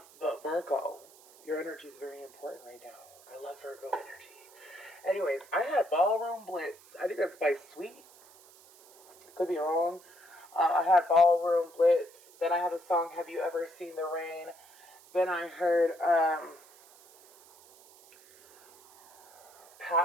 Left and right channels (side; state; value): right; noise; hiss, 25 dB below the sound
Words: Virgo, your energy is very important right now. I love Virgo energy. Anyways, I had Ballroom Blitz. I think that's by Sweet. Could be wrong. I had Ballroom Blitz. Then I had the song Have You Ever Seen the Rain? Then I heard